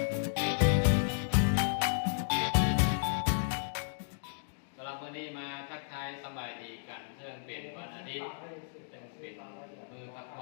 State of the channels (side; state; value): right; silent; digital silence